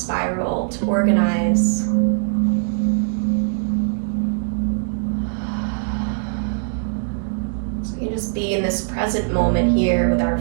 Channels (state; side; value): silent; left; digital silence